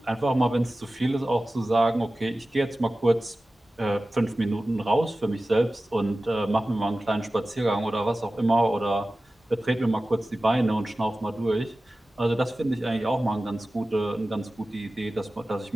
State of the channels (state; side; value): normal; both; correlation 0.96